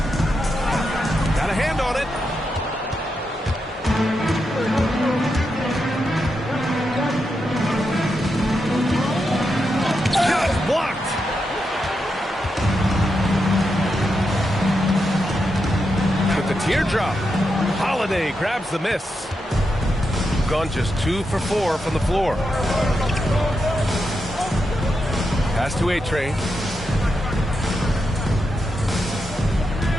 Got a hand on it. Just blocked. With the teardrop, Holiday grabs the miss. Gone just 2 for 4 from the floor. Pass to A-Train.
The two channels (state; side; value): normal; both; correlation 0.85